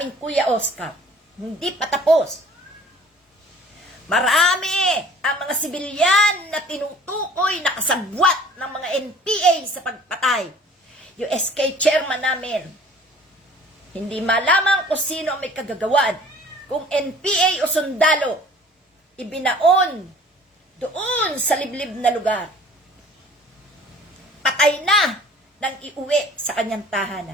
Kuya Oscar. Hindi pa tapos. Marami ang mga sibilyan na tinutukoy na kasabwat ng mga NPA sa pagpatay. Yung SK chairman namin, hindi malaman kung sino ang may kagagawan, kung NPA o sundalo. ibinaon doon sa liblib na lugar. Patay na nang iuwi sa kanyang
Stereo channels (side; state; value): both; normal; correlation 0.49